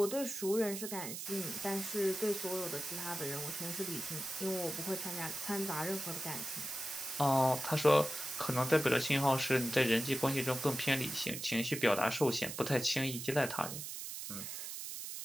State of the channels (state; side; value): noise; right; hiss, 7 dB below the sound